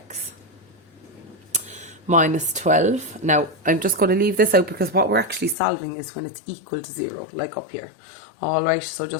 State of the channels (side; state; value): right; drops out; at 5.6 s